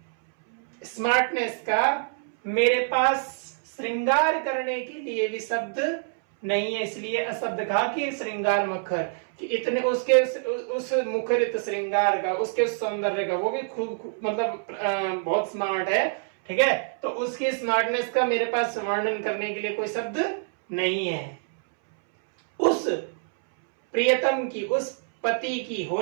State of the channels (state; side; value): silent; left; 61 dB below the other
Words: स्मार्टनेस का मेरे पास श्रृंगार करने के लिए भी शब्द नहीं है, इसलिए अशब्द कहा कि श्रृंगार मुखर, कि इतने उसके उस मुखरित श्रृंगार का, उसके उस सौंदर्य का, वो भी खूब मतलब बहुत स्मार्ट है, ठीक है। तो उसकी स्मार्टनेस का मेरे पास वर्णन करने के लिए कोई शब्द नहीं है। उस प्रियतम की, उस पति की,